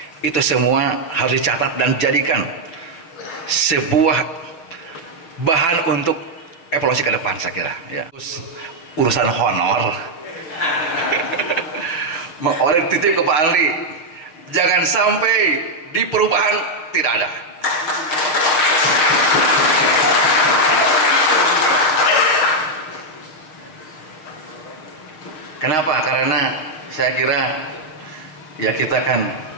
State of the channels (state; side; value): late; right; 6.5 ms